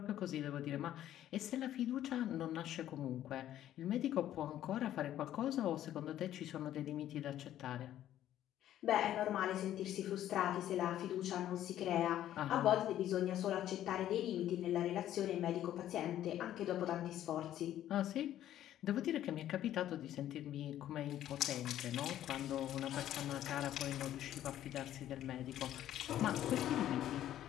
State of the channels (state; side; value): quieter; right; 12.1 dB